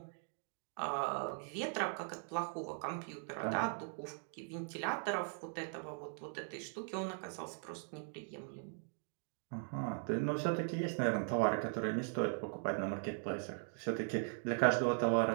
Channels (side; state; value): left; silent; 51 dB below the other